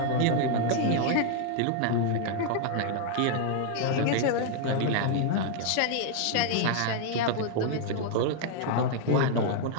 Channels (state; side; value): different; both; correlation 0.00